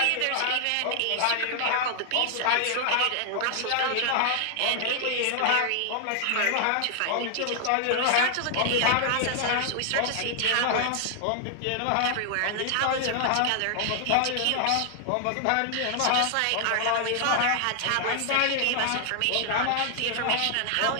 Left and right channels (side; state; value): both; different; correlation 0.00